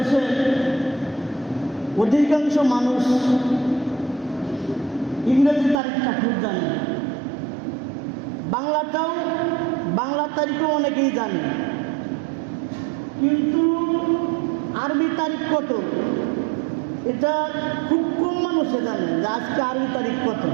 অধিকাংশ মানুষ ইংরেজি তারিখটা খুব জানে, বাংলা তারিখও অনেকেই জানে, কিন্তু আরবি তারিখ কত এটা খুব কম মানুষে জানে যে আজকে আরবি তারিখ কত।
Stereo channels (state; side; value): drops out; left; at 5.8 s